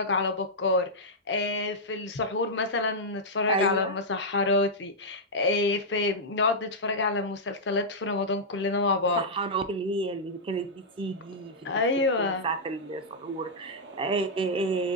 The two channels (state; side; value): normal; both; correlation -0.07